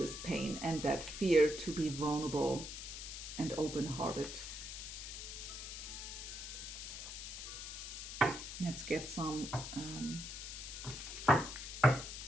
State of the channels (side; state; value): left; noise; hiss, 8 dB below the sound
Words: pain and that fear to be vulnerable and open-hearted. Let's get some